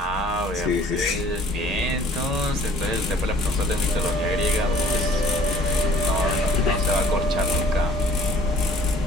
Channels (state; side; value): normal; both; correlation 0.53